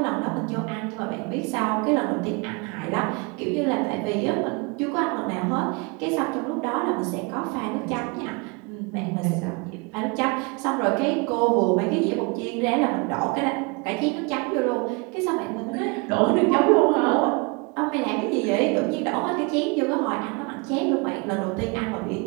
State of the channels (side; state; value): left; quieter; 29.8 dB